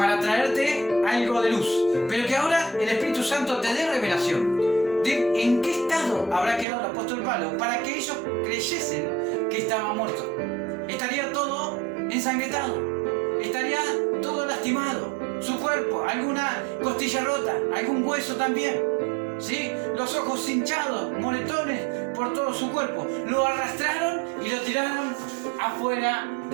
traerte algo de luz, pero que ahora el Espíritu Santo te dé revelación de en qué estado habrá quedado el apóstol Pablo para que ellos creyesen que estaba muerto. Estaría todo ensangrentado, estaría todo lastimado, su cuerpo, alguna costilla rota, algún hueso también, ¿sí? Los ojos hinchados, moretones por todo su cuerpo. Lo arrastraron y lo tiraron afuera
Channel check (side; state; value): left; drops out; at 6.7 s